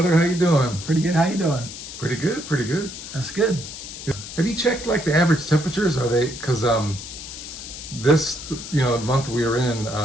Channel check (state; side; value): noise; left; hiss, 11 dB below the sound